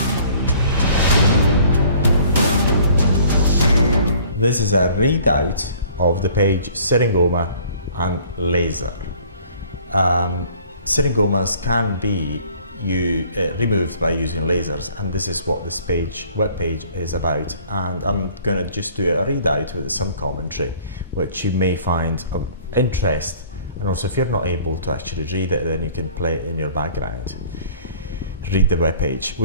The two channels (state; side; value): inverted; both; correlation -0.53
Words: This is a readout of the page Syringoma and laser. Syringomas can be removed by using lasers, and this is what this web page is about. And I'm going to just do a readout with some commentary, which you may find of interest. And also, if you're not able to actually read it, then you can play it in your background. Read the web page.